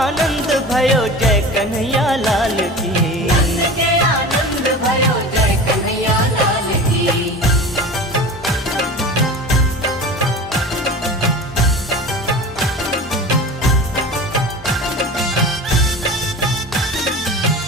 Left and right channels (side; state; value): both; normal; correlation 0.34